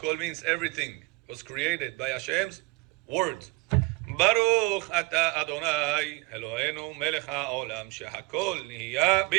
means everything was created by Hashem's words. ברוך אתה אדוני אלוהינו מלך העולם שהכל נהיה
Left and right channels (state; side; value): quieter; left; 24.5 dB